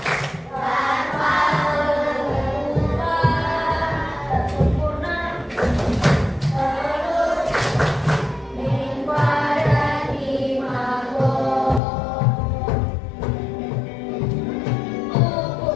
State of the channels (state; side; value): drops out; right; at 11.8 s